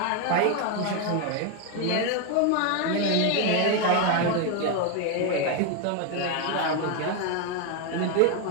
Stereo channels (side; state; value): both; different; correlation 0.01